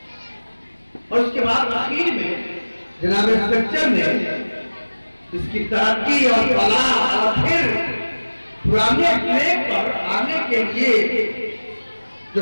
और उसके बाद आखिर में जनाब सच्चर ने इसकी तरक्की और फलाह और फिर पुराने ट्रैक पर आने के लिए जो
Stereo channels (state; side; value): inverted; both; correlation -1.00